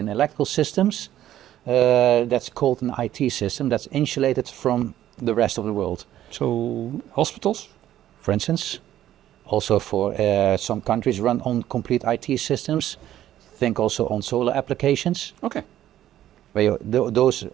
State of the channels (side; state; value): left; quieter; 12.4 dB